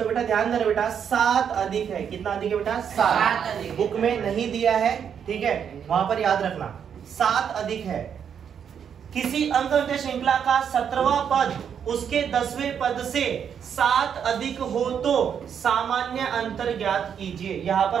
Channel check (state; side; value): quieter; left; 7.9 dB